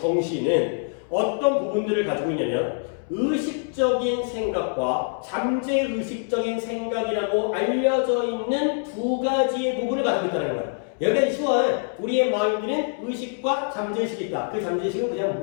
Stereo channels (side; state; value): right; silent; 62 dB below the other